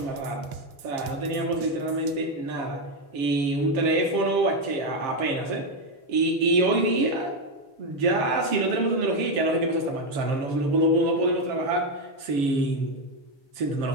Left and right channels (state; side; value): late; left; 6.9 ms